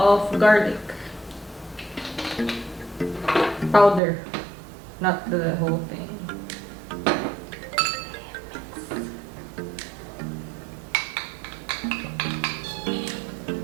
garlic. Powder, not the whole thing.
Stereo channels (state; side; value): drops out; left; at 4.0 s